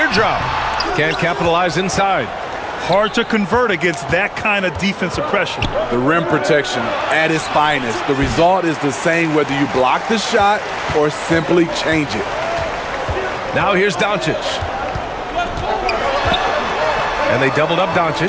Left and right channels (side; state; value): both; identical; correlation 1.00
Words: Can't capitalize inside. Hard to convert against that kind of defensive pressure. The rim protection at its finest. The result is the same whether you block the shot or simply change it. Now here's Doncic. And they doubled up